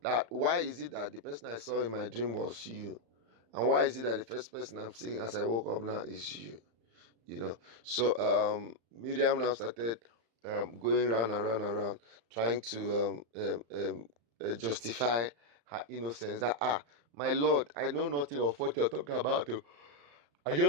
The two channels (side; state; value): left; late; 35 ms